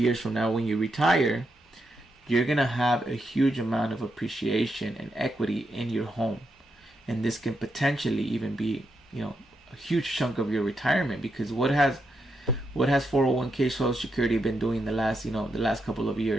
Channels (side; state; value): both; normal; correlation 0.83